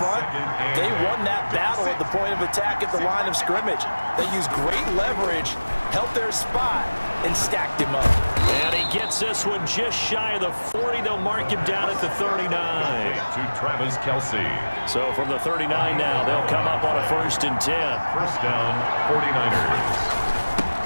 they won that battle at the point of attack at the line of scrimmage. They used great leverage, held their spot, and stacked him up. And he gets this one just shy of the 40. They'll mark him down at the 39. to Travis Kelce. So from the 39 now, they'll come up on a 1st and 10. First down, 49ers.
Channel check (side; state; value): both; inverted; correlation -1.00